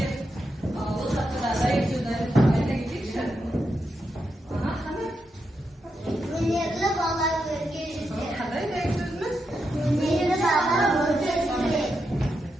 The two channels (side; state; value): both; normal; correlation 0.85